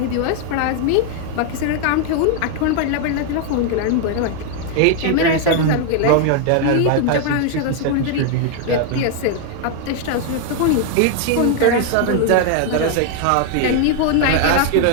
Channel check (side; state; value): both; different; correlation 0.00